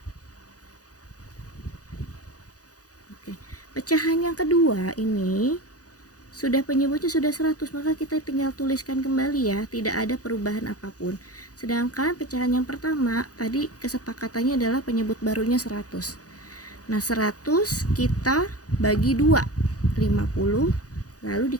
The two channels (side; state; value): right; late; 0.67 ms